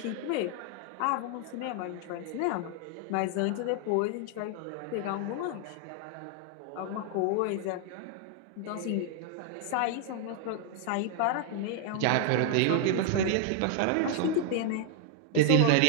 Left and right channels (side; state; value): both; different; correlation 0.00